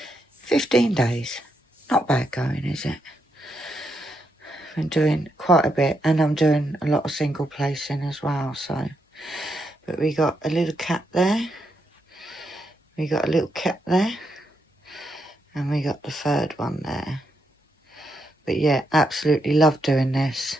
15 days. Not bad going, is it? Been doing quite a bit, and I'm doing a lot of single placing as well, so. But we got a little cat there. We got a little cat there. And we got the third one there. But yeah, absolutely love doing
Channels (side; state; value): both; normal; correlation 0.81